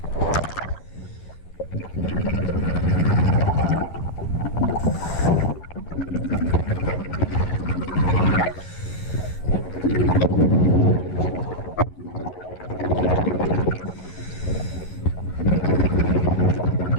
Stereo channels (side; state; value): right; late; 11 ms